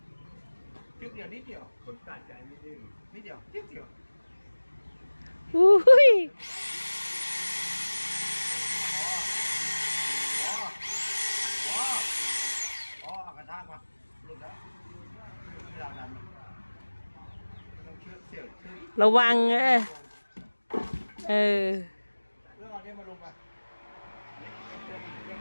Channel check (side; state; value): both; inverted; correlation -1.00